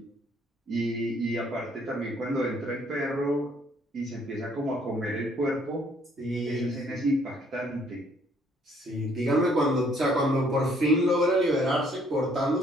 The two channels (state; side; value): normal; both; correlation 0.64